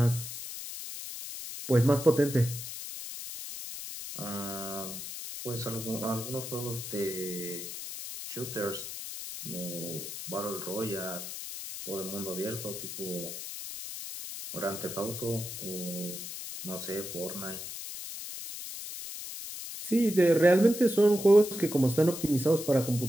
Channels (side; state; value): left; noise; hiss, 8 dB below the sound